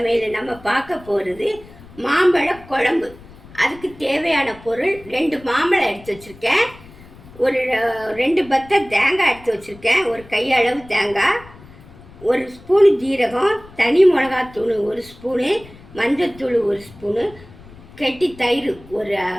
நம்ம பார்க்க போகிறது மாம்பழ குழம்பு. அதுக்கு தேவையான பொருள் 2 மாம்பழம் எடுத்து வச்சுருக்கேன், ஒரு 2 பத்தை தேங்காய் எடுத்து வச்சுருக்கேன், ஒரு கையளவு தேங்காய், 1 ஸ்பூனு ஜீரகம், தனி மிளகாத்தூள் 1 ஸ்பூனு, மஞ்சத்தூள் 1 ஸ்பூனு, கெட்டி தயிர்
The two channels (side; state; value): left; noise; rumble, 21 dB below the sound